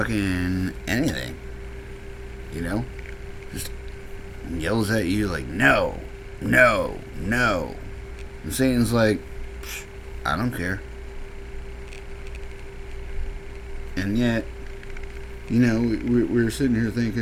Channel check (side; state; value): both; identical; correlation 1.00